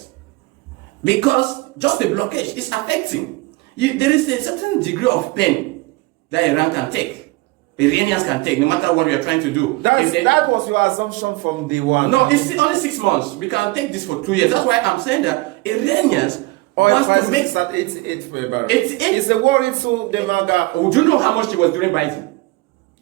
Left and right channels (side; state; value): left; quieter; 21.9 dB